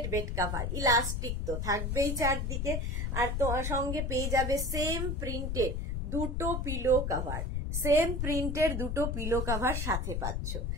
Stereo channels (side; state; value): left; noise; rumble, 1 dB below the sound